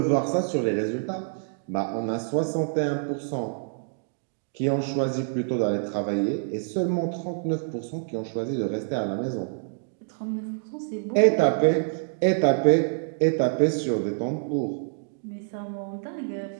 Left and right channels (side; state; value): left; silent; digital silence